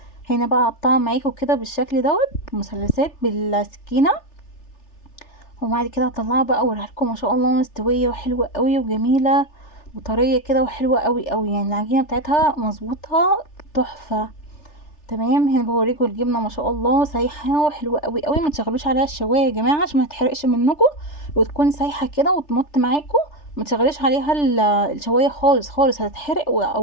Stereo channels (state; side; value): late; right; 3.4 ms